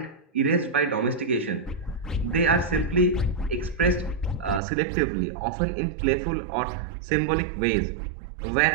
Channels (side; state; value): left; drops out; at 4.6 s